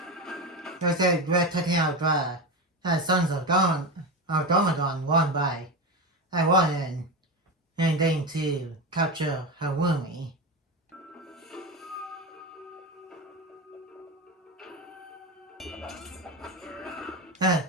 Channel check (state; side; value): normal; both; correlation 0.19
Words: I said we're taking out the Sons of Domagon one by one and then to capture Harumi.